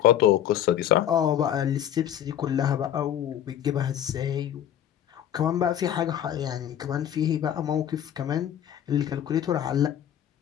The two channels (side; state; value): right; quieter; 10.6 dB